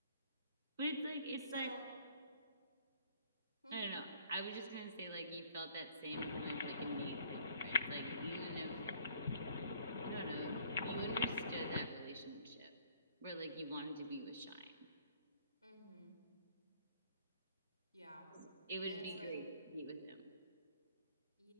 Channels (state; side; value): inverted; both; correlation -0.58